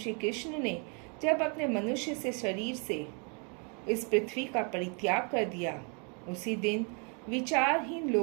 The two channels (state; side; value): quieter; left; 36.8 dB